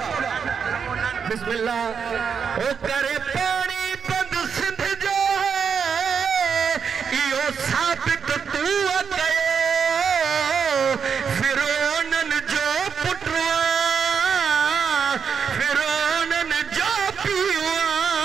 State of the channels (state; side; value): quieter; left; 6.5 dB